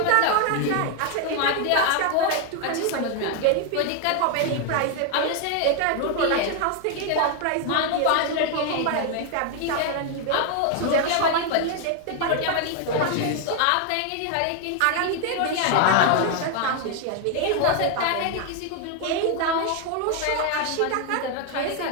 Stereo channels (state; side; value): different; both; correlation 0.00